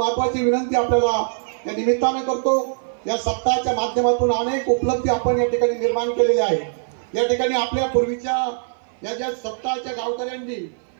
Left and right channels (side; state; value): left; silent; 56 dB below the other